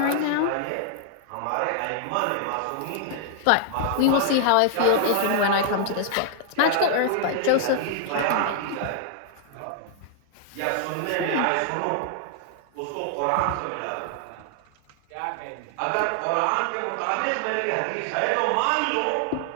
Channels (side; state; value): both; different; correlation 0.00